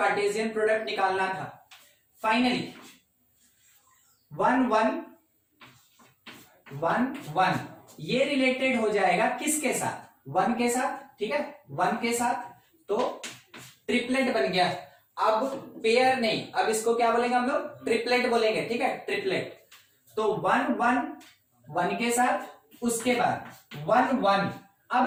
प्रोडक्ट निकालना था। फाइनली 1 1 1 1 ये रिलेटेड हो जाएगा किसके साथ? 1 के साथ। ठीक है, 1 के साथ तो ट्रिपलेट बन गया। अब पेयर नहीं, अब इसको क्या बोलेंगे हम लोग? ट्रिपलेट बोलेंगे। ठीक है, ट्रिपलेट। तो 1 1 1 के साथ, उसके बाद 1 1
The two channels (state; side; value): identical; both; correlation 1.00